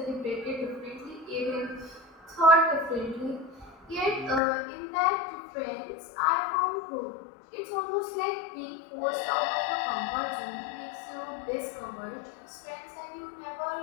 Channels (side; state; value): right; drops out; at 4.4 s